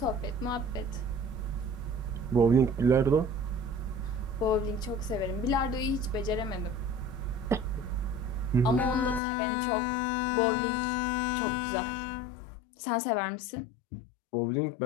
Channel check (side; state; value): right; drops out; at 9.2 s